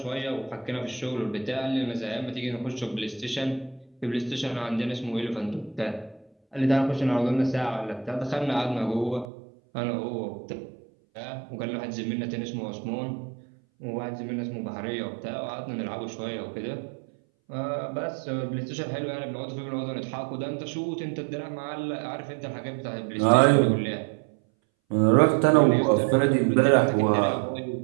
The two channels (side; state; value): left; drops out; at 9.2 s